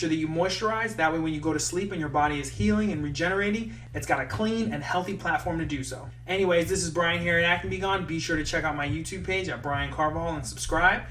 that you moisturize. That way when you go to sleep and your body is healing and regenerating, it's got a clean and healthy platform to do so. Anyways, this is Brian here at Acne Be Gone. Be sure to check out my YouTube page at Brian Carvajal and subscribe.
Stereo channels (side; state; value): both; identical; correlation 1.00